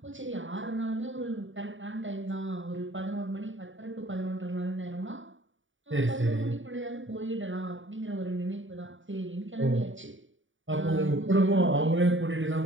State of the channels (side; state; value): left; late; 0.56 ms